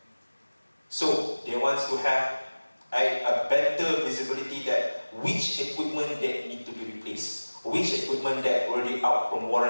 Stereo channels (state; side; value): inverted; both; correlation -1.00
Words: So they want to have a better visibility that which equipment that need to be replaced, which equipment that already out from